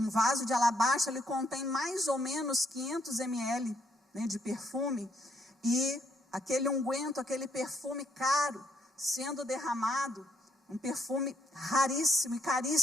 vaso de alabastro, ele contém mais ou menos 500 ml, de perfume, e aquele unguento, aquele perfume caro, sendo derramado, um perfume raríssimo e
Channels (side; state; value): both; normal; correlation 0.72